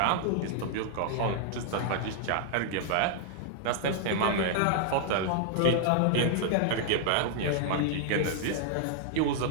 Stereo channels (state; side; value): different; both; correlation -0.01